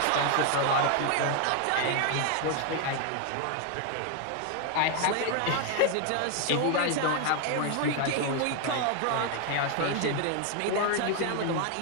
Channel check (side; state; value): both; different; correlation 0.01